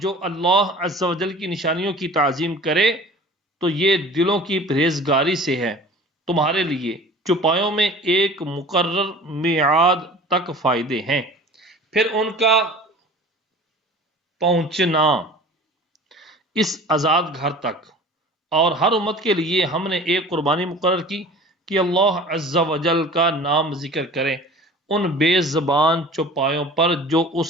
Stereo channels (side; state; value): both; normal; correlation 0.42